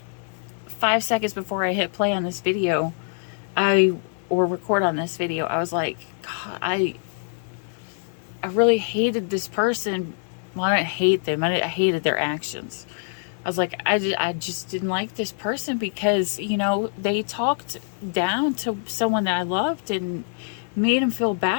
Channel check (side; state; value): right; silent; 62 dB below the other